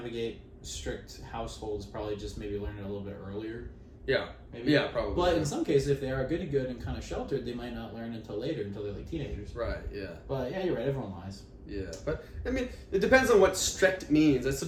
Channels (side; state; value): both; identical; correlation 1.00